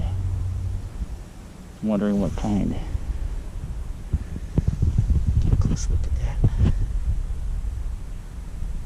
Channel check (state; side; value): identical; both; correlation 1.00